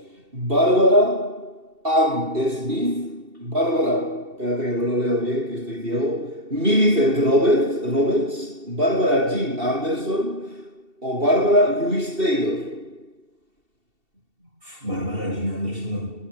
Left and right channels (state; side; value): late; left; 2.7 ms